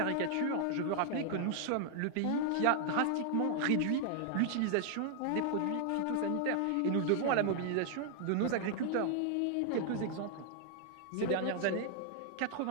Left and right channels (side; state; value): both; different; correlation 0.00